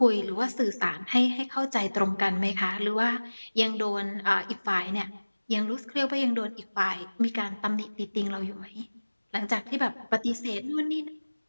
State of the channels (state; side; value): inverted; both; correlation -1.00